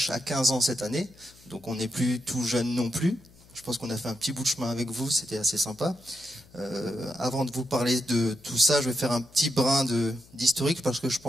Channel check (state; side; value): noise; left; hum, 26 dB below the sound